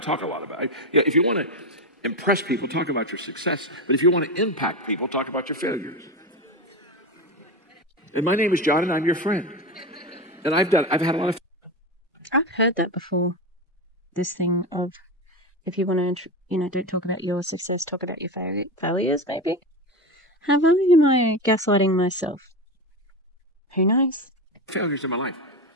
talk a lot about it. If you want to impress people, talk about your success. But if you want to impact people, talk about your failures. And my name is John, and I'm your friend. And I've had a lot of. I've heard that before. This thing of, if you want to, don't talk about your success, talk about your failures, maybe. Have I, am I gaslighting myself? Who knows? Failures in my life.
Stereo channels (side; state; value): both; normal; correlation 0.19